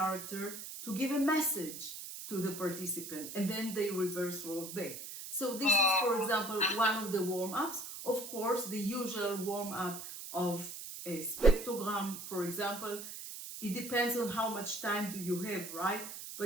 to give a message to the participant, and then they reverse role back. So this is, for example, one of the warm-ups. Of course, the usual warm-up of a spectrogram, for example, it depends on how much time do you have, right?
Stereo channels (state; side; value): noise; right; hiss, 9 dB below the sound